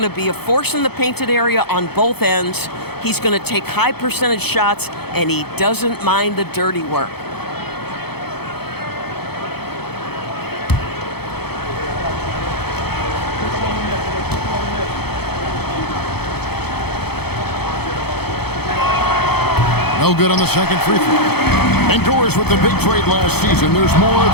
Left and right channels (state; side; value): late; right; 0.97 ms